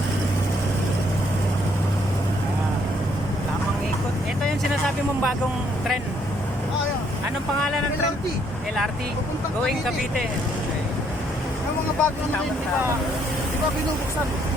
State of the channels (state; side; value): normal; both; correlation 0.69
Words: Tamang ikot. Ito yung sinasabi mong bagong trend. Ayan. Anong pangalan ng trend? LRT. LRT. Papuntang Going Cavite. Cavite. Yung mga bagong trend, di ba binubuksan?